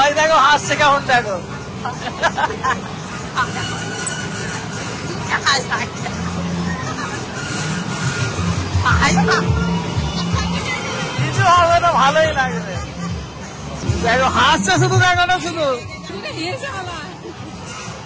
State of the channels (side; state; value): both; identical; correlation 1.00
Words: দেখো হাসছে কেমন, দেখো কিছু হবে না, ভালোই লাগবে। দেখো হাসছে শুধু, দেখো না শুধু।